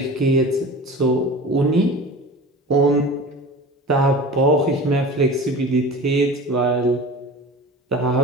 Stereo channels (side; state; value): both; normal; correlation 0.35